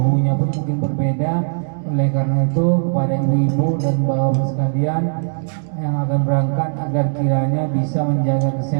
pun mungkin berbeda. Oleh karena itu kepada ibu-ibu dan bapak sekalian yang akan berangkat agar kiranya bisa menjaga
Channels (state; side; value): silent; left; digital silence